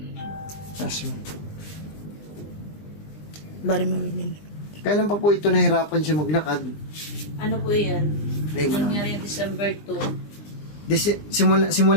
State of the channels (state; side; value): late; right; 20 ms